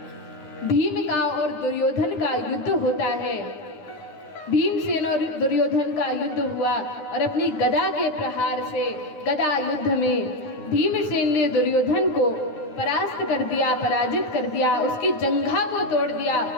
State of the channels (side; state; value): right; late; 10 ms